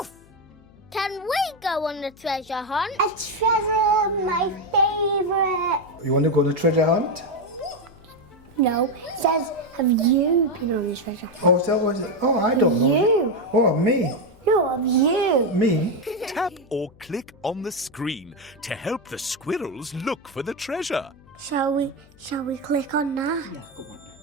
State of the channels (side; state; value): left; noise; hum, 26 dB below the sound